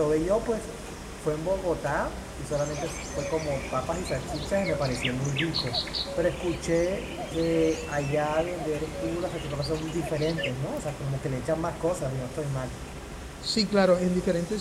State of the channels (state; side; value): identical; both; correlation 1.00